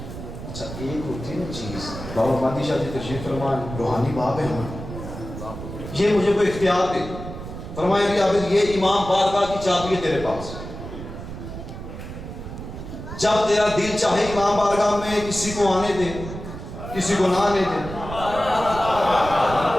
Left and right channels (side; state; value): right; noise; rumble, 10 dB below the sound